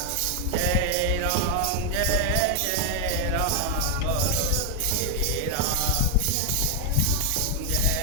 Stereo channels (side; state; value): both; different; correlation 0.01